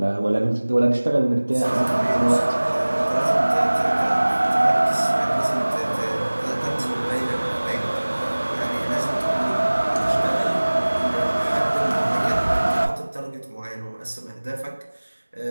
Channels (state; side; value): inverted; both; correlation -1.00